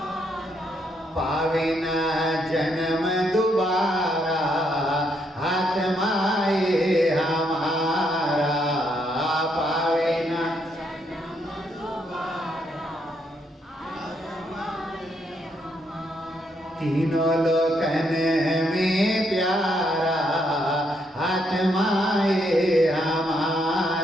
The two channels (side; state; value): both; normal; correlation 0.75